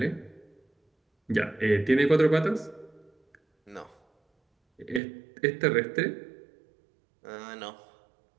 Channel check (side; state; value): left; drops out; at 5.0 s